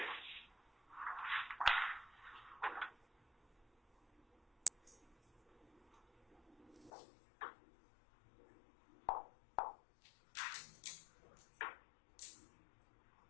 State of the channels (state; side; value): drops out; right; at 6.9 s